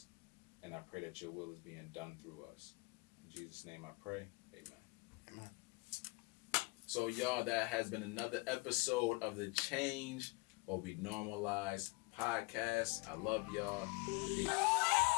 And I pray that your will is being done through us. In Jesus' name I pray. Amen. Amen. So, y'all, that has been another episode of the Change or We Normalize podcast. I love y'all.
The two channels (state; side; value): quieter; right; 26.9 dB